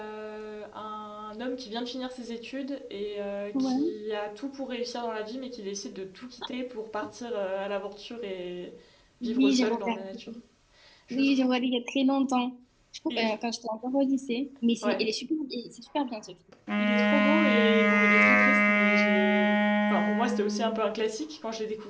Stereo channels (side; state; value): both; identical; correlation 1.00